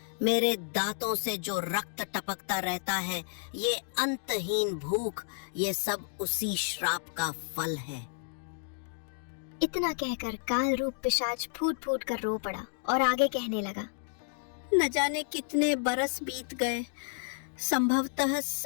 मेरे दांतों से जो रक्त टपकता रहता है, ये अंतहीन भूख, ये सब उसी श्राप का फल है। इतना कहकर काल रूप पिशाच फूट फूट कर रो पड़ा और आगे कहने लगा, न जाने कितने बरस बीत गए। संभवतः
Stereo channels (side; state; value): right; silent; digital silence